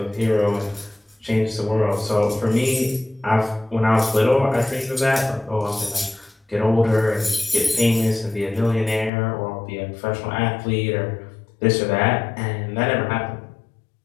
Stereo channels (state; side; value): drops out; right; at 9.1 s